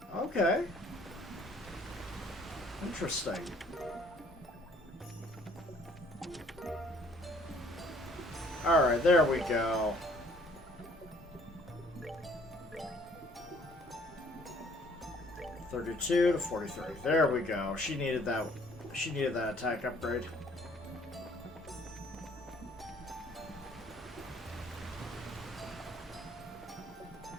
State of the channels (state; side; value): normal; both; correlation 0.59